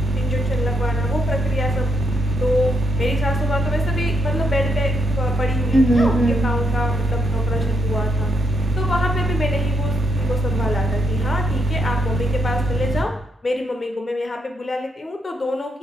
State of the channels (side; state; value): both; normal; correlation 0.80